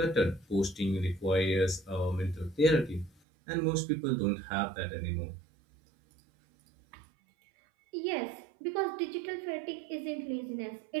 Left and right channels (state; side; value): drops out; left; at 3.1 s